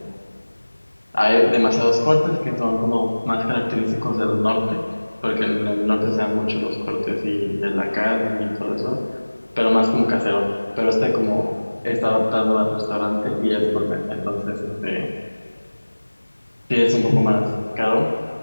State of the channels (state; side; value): inverted; both; correlation -1.00